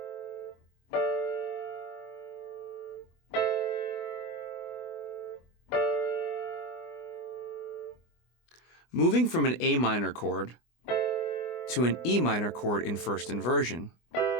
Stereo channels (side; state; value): right; late; 24 ms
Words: Moving from an A minor chord to an E minor chord in first inversion